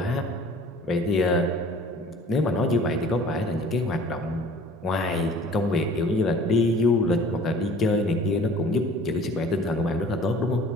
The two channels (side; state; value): both; normal; correlation 0.49